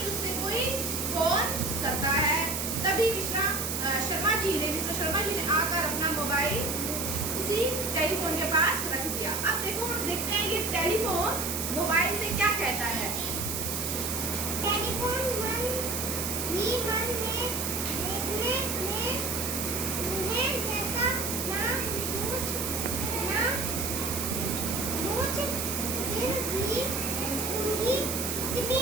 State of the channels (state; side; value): noise; right; hiss, 2 dB below the sound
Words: उससे कोई फोन करता है। तभी मिस्टर शर्मा जी ने आकर अपना मोबाइल उसी टेलीफोन के पास रख दिया। अब देखो हम देखते हैं ये टेलीफोन मोबाइल से क्या कहता है। टेलीफोन मन ही मन में देखने में उन्हें जैसा ना पूछ फिर भी उनकी